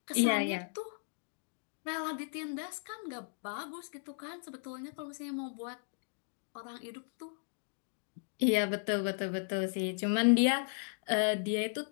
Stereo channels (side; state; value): right; silent; digital silence